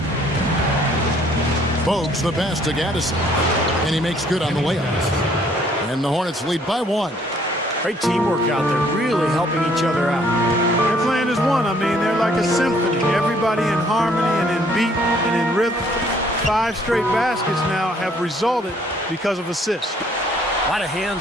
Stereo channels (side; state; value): both; normal; correlation 0.62